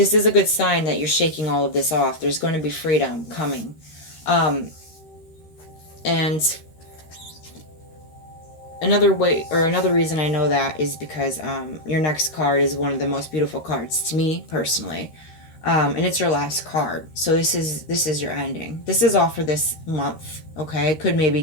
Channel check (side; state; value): right; late; 13 ms